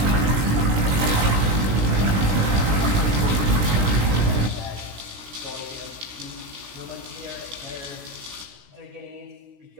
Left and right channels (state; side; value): late; left; 16 ms